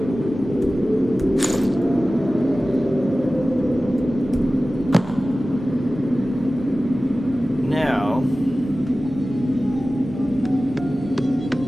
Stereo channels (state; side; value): noise; right; hum, 19 dB below the sound